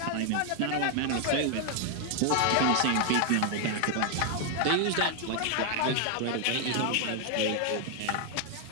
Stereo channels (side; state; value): both; different; correlation 0.00